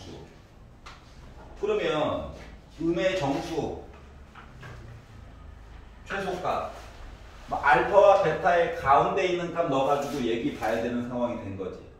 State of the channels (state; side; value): identical; both; correlation 1.00